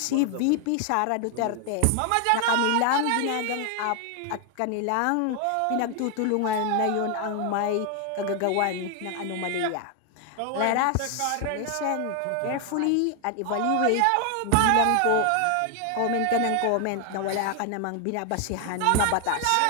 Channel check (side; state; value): both; different; correlation 0.00